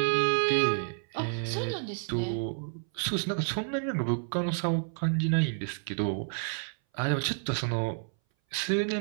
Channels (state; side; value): silent; left; 58 dB below the other